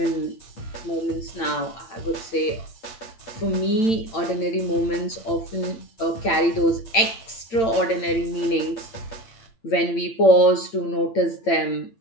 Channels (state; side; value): late; right; 8.9 ms